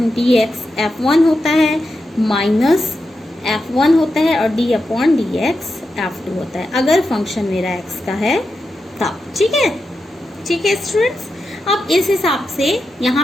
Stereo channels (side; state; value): both; normal; correlation 0.88